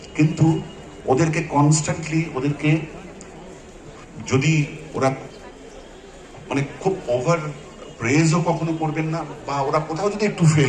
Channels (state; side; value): identical; both; correlation 1.00